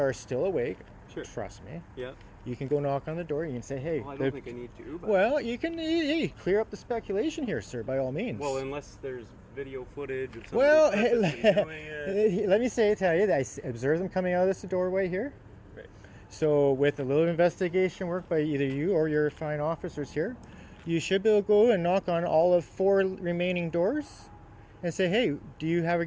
are still awake. Sure. Trust me. Yeah. You can go knock on the door. You can say, "Hey." Well, I don't think I need to. But Well, you can clear up the speculation here, sir, by all means. well, unless there's video footage of somebody Well, purposely doing it. let me tell you that I observed them coming out of this doorway here. Right. So with a little investigation work by either you or your fine officers here, you should be able to go and knock on all of 4 remaining doors and say, hey, do you have a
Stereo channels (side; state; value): both; identical; correlation 1.00